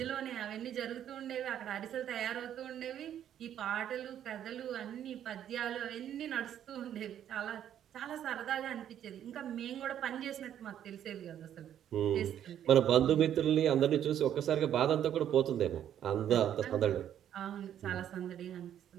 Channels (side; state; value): left; quieter; 10.3 dB